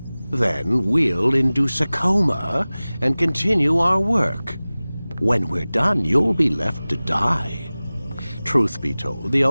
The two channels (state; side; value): inverted; both; correlation -0.98